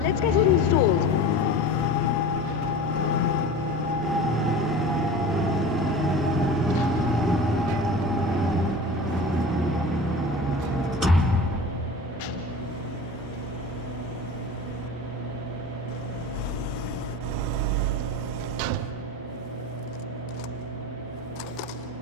Let's get it installed.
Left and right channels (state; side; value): normal; both; correlation 0.35